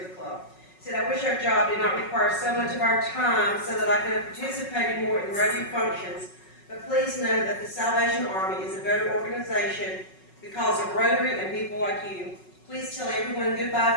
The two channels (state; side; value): late; right; 5.4 ms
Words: the club. He said, "I wish our job did not require so much of our time so that I could have participated more in radio functions, but please know that the Salvation Army is a better organization because of Rotary and people like you. Please tell everyone